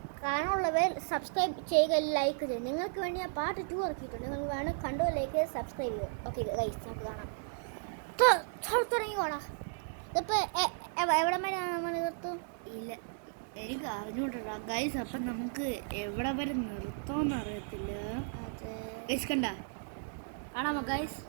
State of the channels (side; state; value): left; silent; digital silence